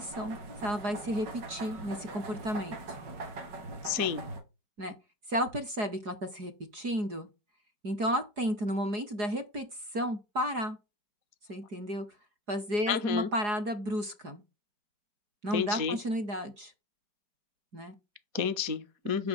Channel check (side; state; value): left; late; 4.8 ms